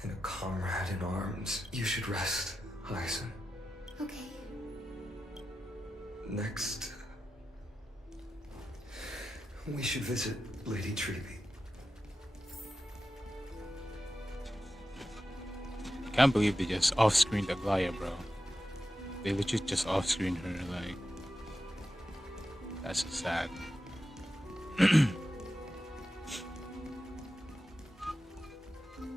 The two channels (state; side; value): normal; both; correlation 0.91